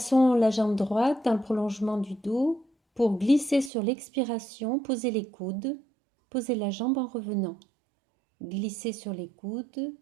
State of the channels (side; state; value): left; drops out; at 3.7 s